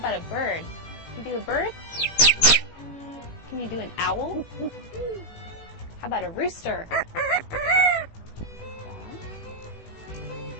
a bird? Can you do a bird? Can you do an owl? How about a rooster?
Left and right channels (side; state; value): right; late; 18 ms